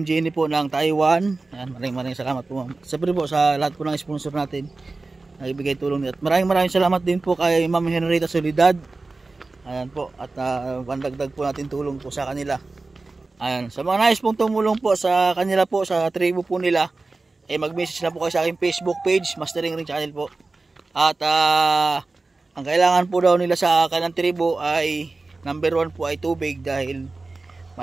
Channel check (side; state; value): left; quieter; 3.5 dB